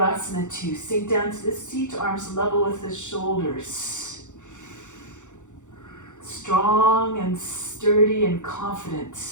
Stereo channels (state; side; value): late; right; 0.85 ms